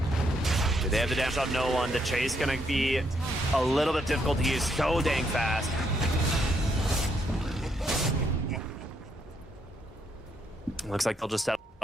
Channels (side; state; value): both; normal; correlation 0.75